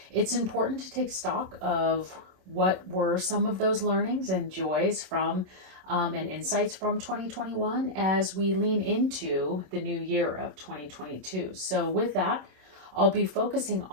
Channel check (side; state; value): left; late; 27 ms